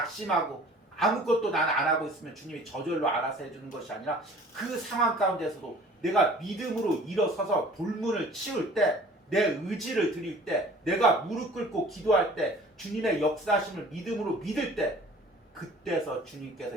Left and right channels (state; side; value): normal; both; correlation 0.48